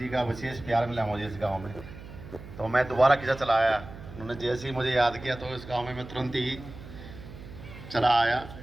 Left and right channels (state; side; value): noise; right; hum, 14 dB below the sound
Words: का विशेष प्यार मिला मुझे इस गांव में, तो मैं दोबारा किसा चला आया। उन्होंने जैसे ही मुझे याद किया तो इस गांव में मैं तुरंत ही चला आया।